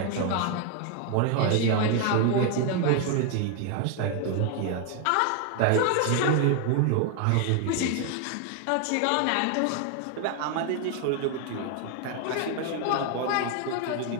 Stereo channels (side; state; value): both; different; correlation 0.01